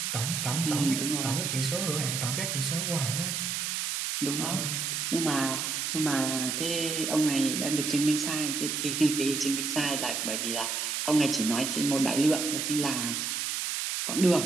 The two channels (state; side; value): noise; right; hiss, 1 dB below the sound